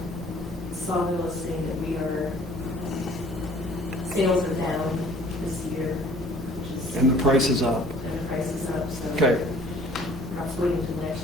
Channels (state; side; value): normal; both; correlation 0.53